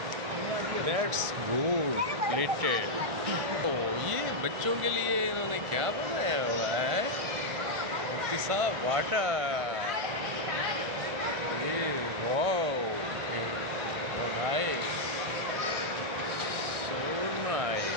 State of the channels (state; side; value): late; left; 1.4 ms